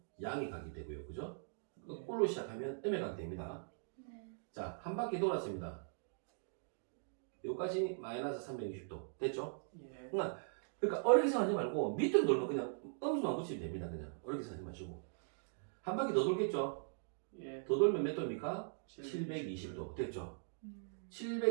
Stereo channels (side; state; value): left; silent; digital silence